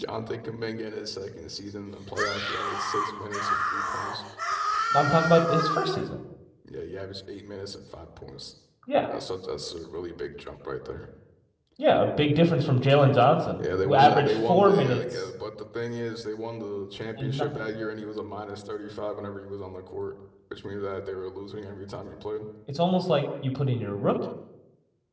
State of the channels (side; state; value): both; identical; correlation 1.00